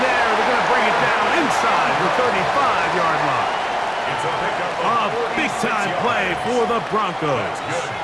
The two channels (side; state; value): both; identical; correlation 1.00